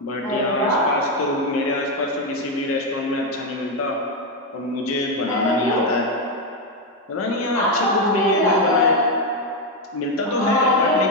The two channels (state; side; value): normal; both; correlation 0.06